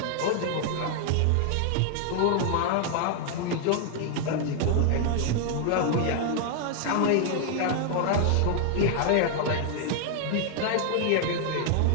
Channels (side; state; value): both; different; correlation 0.00